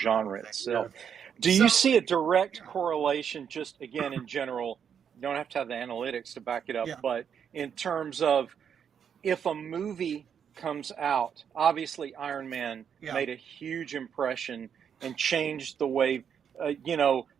itself. Do you see a direct correlation, just again in general? You don't have to have the analytics to back it up, but in terms of if a movie comes out, obviously Iron Man made a huge impression and changed the way,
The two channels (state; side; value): quieter; left; 7.8 dB